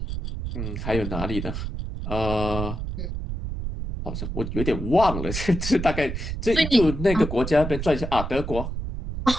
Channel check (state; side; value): noise; right; rumble, 5 dB below the sound